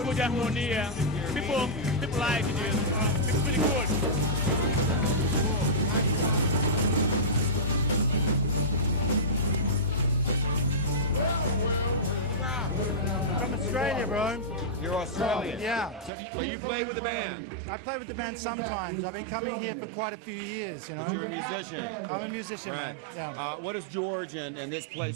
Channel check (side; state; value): left; drops out; at 16.1 s